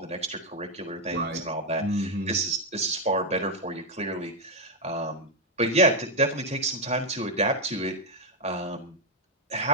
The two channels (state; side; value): normal; both; correlation 0.02